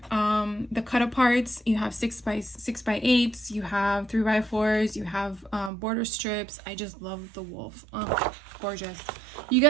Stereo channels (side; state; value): left; drops out; at 5.7 s